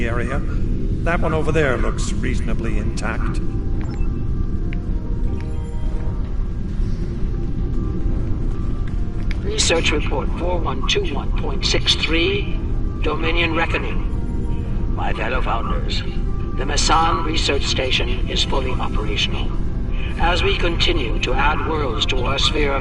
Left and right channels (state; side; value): identical; both; correlation 1.00